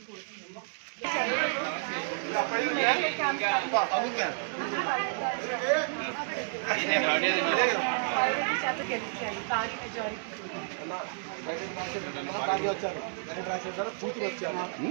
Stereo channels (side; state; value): left; silent; digital silence